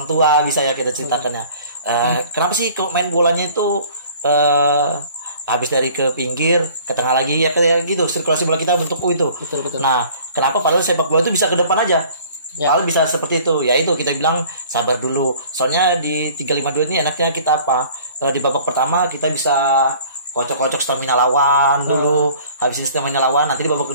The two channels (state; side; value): inverted; both; correlation -0.50